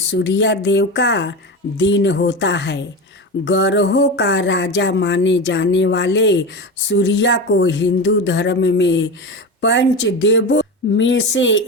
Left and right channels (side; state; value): both; normal; correlation 0.23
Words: देव का दिन होता है। ग्रहों का राजा माने जाने वाले सूर्य को हिंदू धर्म में पंच देवों में से